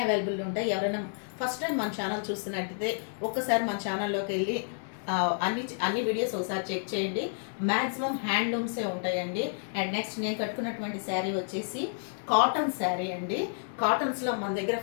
అవైలబుల్ ఉంటాయి. ఎవరైనా ఫస్ట్ టైం మన ఛానల్ చూస్తున్నట్టయితే ఒక్కసారి మన ఛానల్లోకి వెళ్ళి అన్ని వీడియోస్ ఒకసారి చెక్ చేయండి. మ్యాక్సిమం హ్యాండ్లూమ్సే ఉంటాయండి. అండ్ నెక్స్ట్ నేను కట్టుకున్నటువంటి శారీ వచ్చేసి కాటన్ శారీ అండి. కాటన్స్లో మన దగ్గర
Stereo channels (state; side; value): silent; right; 58 dB below the other